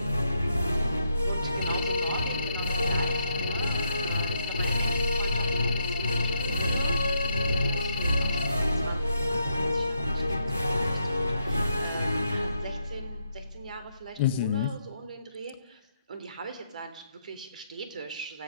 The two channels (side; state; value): both; inverted; correlation -0.79